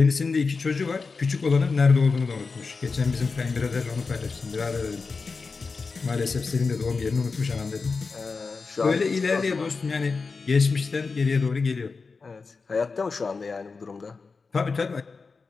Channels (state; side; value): quieter; right; 4.5 dB